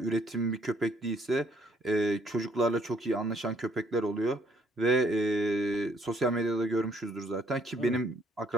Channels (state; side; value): normal; both; correlation 0.66